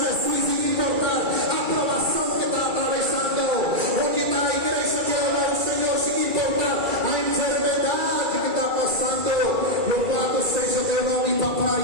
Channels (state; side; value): late; left; 2.3 ms